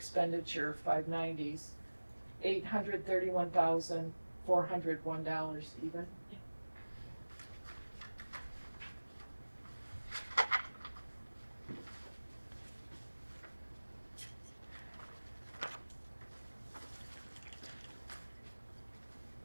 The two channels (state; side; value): inverted; both; correlation -1.00